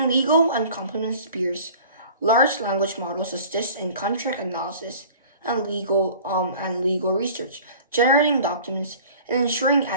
legal and compliance spheres, large language models assist in contract analysis and legal research, generating documents and ensuring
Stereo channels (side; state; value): both; inverted; correlation -0.45